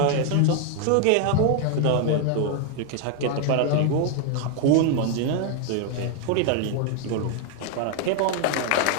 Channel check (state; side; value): different; both; correlation 0.00